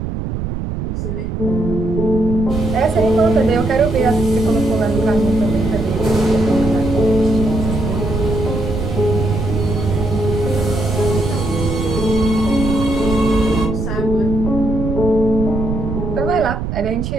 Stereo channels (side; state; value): right; noise; rumble, 4 dB below the sound